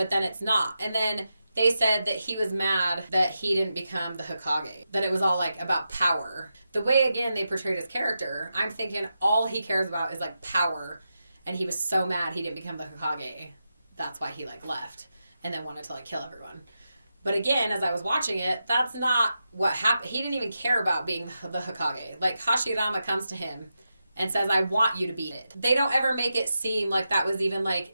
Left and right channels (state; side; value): inverted; both; correlation -0.88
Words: then it's not. And then they said that he was mad that he didn't become the Hokage. That it was all, like, about power. The way, again, they portrayed his character, I'm thinking all he cares about is, like, power. And he was so mad he didn't become the Hokage. That's why he, like, left. And then wanted to, like, kill everyone. But again, as I was watching it, that's not what happened. He didn't even care about being the Hokage. Like, Hashirama comes to him and says, I want you to be it. They don't ever make it seem like that was even, like,